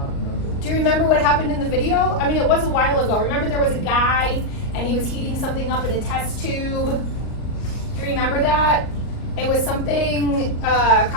Do you remember what happened in the video? I mean, it was a while ago. Remember there was a guy and he was heating something up in a test tube? Do you remember that? It was something,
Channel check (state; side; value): late; right; 38 ms